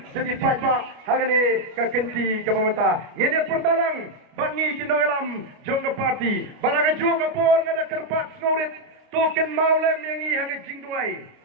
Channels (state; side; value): late; left; 29 ms